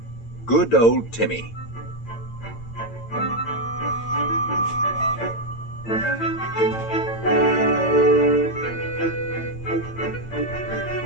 Good Old Timmy.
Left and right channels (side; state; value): right; late; 8.9 ms